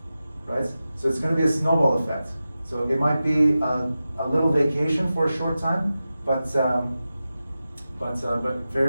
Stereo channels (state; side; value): inverted; both; correlation -0.93